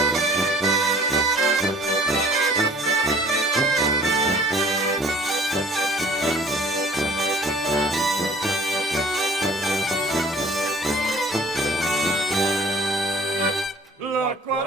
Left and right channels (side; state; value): both; normal; correlation 0.51